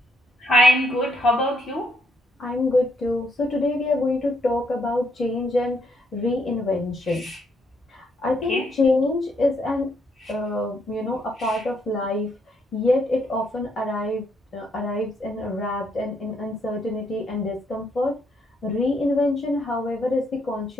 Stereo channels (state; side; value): normal; both; correlation 0.73